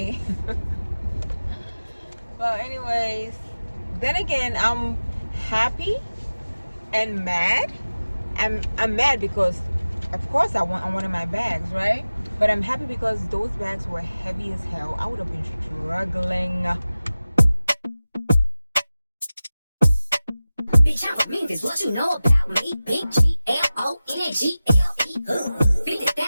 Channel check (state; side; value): inverted; both; correlation -0.97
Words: Well, anyways, then again, I'm happy and mad. I'm mad because of course I wanted my bags, right? But I'm happy because those bags were heavy as hell. I would have been struggling. Bitch, I'm a Memphis, what you know about me? Big G-L-O-N-G-L-E